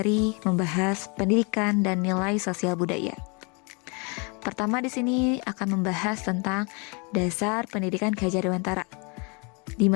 membahas pendidikan dan nilai sosial budaya. Pertama di sini akan membahas tentang dasar pendidikan Ki Hajar Dewantara, di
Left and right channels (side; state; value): right; quieter; 32.3 dB